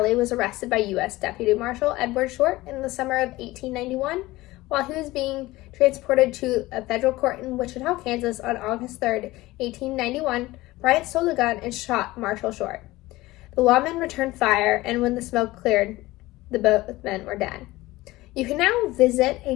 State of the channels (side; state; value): right; quieter; 18.9 dB